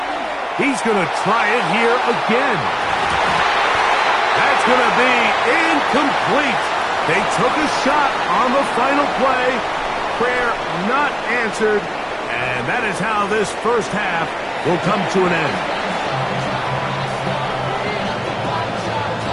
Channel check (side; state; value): both; identical; correlation 1.00